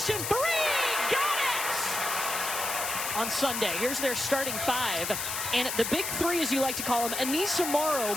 3! Got it! On Sunday, here's their starting 5. And the big 3, as you like to call them, Anissa Morrow,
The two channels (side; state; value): left; noise; hiss, 3 dB below the sound